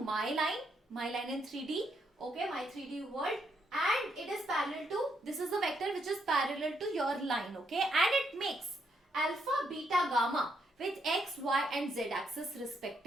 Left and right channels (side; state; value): both; normal; correlation 0.77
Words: my line in 3D. Okay, my 3D world, and it is parallel to, this is the vector which is parallel to your line. Okay, and it makes alpha, beta, gamma with x, y and z axis